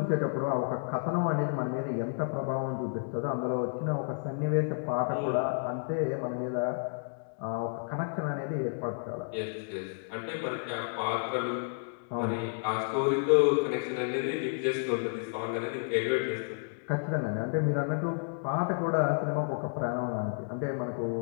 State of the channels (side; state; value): right; silent; digital silence